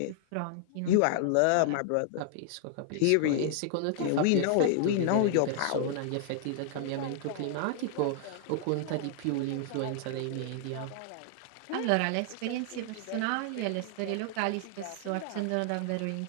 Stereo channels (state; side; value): different; both; correlation -0.01